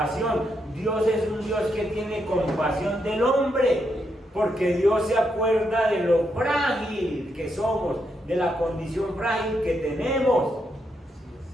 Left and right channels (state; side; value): normal; both; correlation 0.80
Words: Dios es un Dios que tiene compasión del hombre, porque Dios se acuerda de lo frágil que somos, de la condición frágil que tenemos.